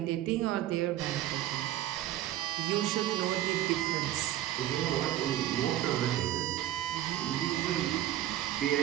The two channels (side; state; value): left; quieter; 13.3 dB